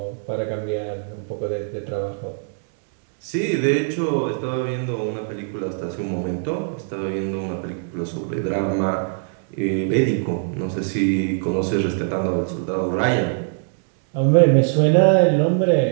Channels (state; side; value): silent; left; digital silence